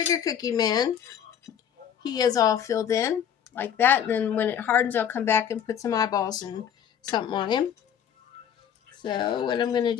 cookie man. He is all filled in like that. And then when it hardens, I'll come back and put some eyeballs and something on him. So what I'm going to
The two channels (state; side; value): quieter; right; 8.9 dB